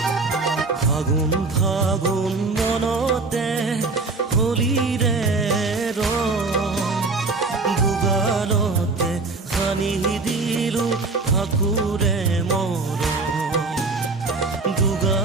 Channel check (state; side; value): quieter; left; 3.8 dB